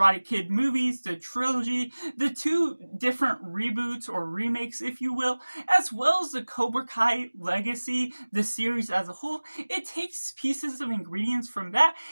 Kid movies, the trilogy, the two different reboots or remakes, if you will, as well as the Cobra Kai legacy, the series as a whole. It takes pieces of ingredients from that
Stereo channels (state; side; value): inverted; both; correlation -1.00